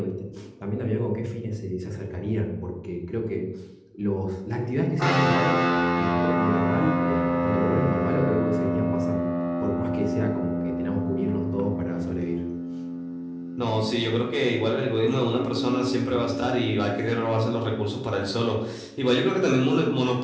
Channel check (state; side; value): identical; both; correlation 1.00